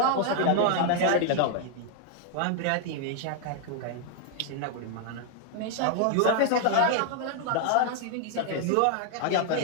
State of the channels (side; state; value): both; different; correlation 0.00